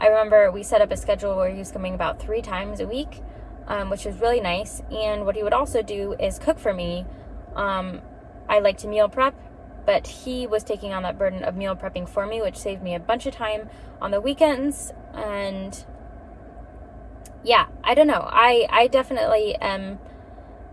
I remember we set up a schedule where he was coming about 3 times a week, which was really nice. And what he would also do is cook for me. I like to meal prep, but he was taking on that burden of meal prepping for me, which saved me a bunch of time on the weekends. And yeah, I don't know. I definitely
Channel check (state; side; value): identical; both; correlation 1.00